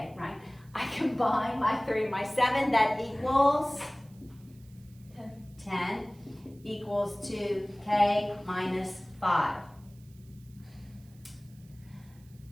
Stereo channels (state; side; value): noise; right; hiss, 29 dB below the sound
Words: right? I combine my 3 and my 7, that equals 10 equals to k minus 5.